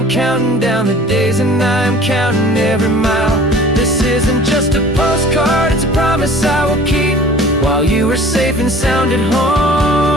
counting down the days and I'm counting every mile. This isn't just a postcard, it's a promise I will keep, while you are safe and sound at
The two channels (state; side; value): normal; both; correlation 0.47